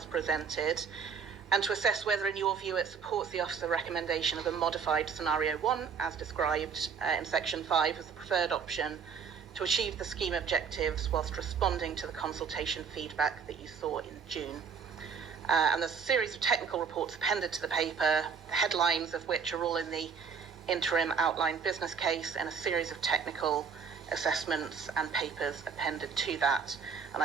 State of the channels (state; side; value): quieter; left; 6.1 dB